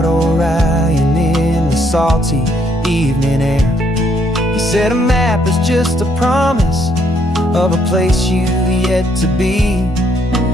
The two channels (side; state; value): both; normal; correlation 0.70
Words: Orion in the salty evening air. You said a map is just a promise of a place you've yet to be,